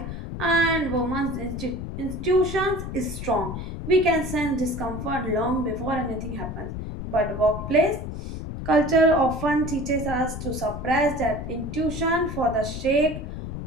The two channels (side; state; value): left; noise; rumble, 7 dB below the sound